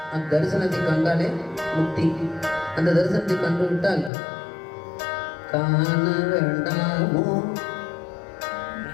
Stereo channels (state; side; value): drops out; right; at 4.1 s